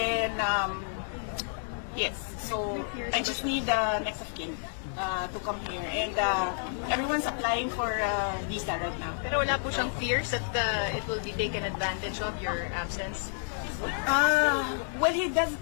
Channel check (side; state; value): right; silent; 58 dB below the other